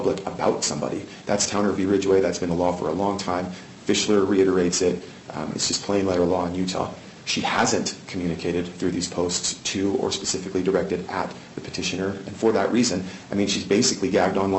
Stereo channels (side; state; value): both; identical; correlation 1.00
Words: about somebody. That's Towner v. Ridgway. That's been the law for a long time. Fischler reiterates it. It's just plain letter law in Utah. She hasn't communicated through these posts to or specifically directed at the petitioner. And for that reason, I mean, she's basically gagged